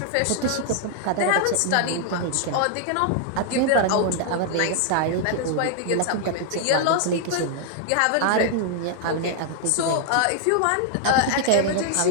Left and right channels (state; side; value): different; both; correlation 0.00